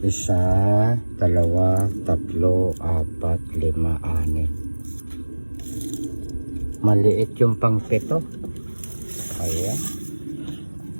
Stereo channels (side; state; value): both; inverted; correlation -1.00